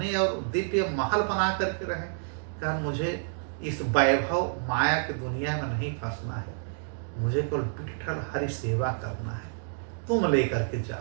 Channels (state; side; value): silent; left; digital silence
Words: और दिव्य महल बना करके रहें, कारण मुझे इस वैभव माया की दुनिया में नहीं फंसना है, मुझे केवल विठ्ठल हरि सेवा करना है, तुम लेकर के